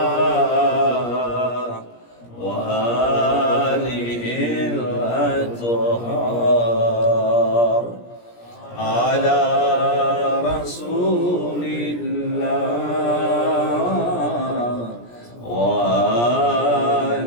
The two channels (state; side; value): late; right; 17 ms